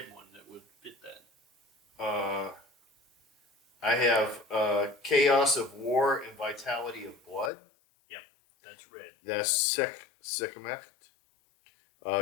one that would fit that. I have chaos of war and vitality of blood. That's red. That's Sekhmet,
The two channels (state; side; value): drops out; right; at 7.5 s